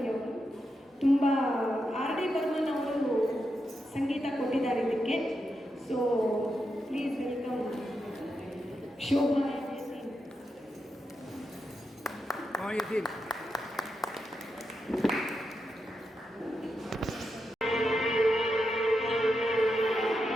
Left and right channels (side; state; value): both; normal; correlation 0.86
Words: ಅವರು. ತುಂಬ ಆರ್ ಡಿ ಬರ್ಮನ್ ಅವರು ಸಂಗೀತ ಕೊಟ್ಟಿದ್ದಾರೆ ಇದಕ್ಕೆ. So please welcome Shobha.